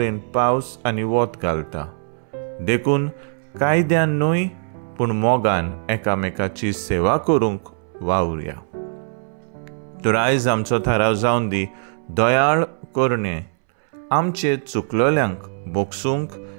पावस आनी वत घालता. देखून कायद्यान न्हय पूण मोगान एकामेकाची सेवा करूंक वावुरया. तर आयज आमचो थाराव जावन दी, दयाळ करणे, आमचे चुकलोल्यांक बोगसूंक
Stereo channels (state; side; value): silent; left; 65 dB below the other